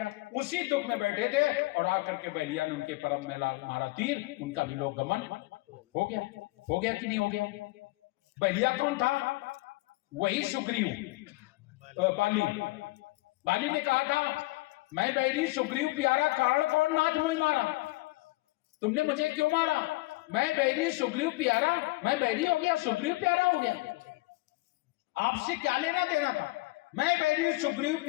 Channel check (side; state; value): right; quieter; 22.3 dB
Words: उसी दुख में बैठे थे और आकर के बलिया ने उनके परम में मारा तीर, उनका भी लोक गमन हो गया कि नहीं हो गया? बलिया कौन था? वही सुग्रीव, बाली ने कहा था, मैं बैरी सुग्रीव प्यारा, कारण कौन नाथ मोहि मारा। तुमने मुझे क्यों मारा? मैं बैरी सुग्रीव प्यारा, मैं बैरी हो गया, सुग्रीव प्यारा हो गया। आपसे क्या लेना देना था? मैं बैरी सुग्रीव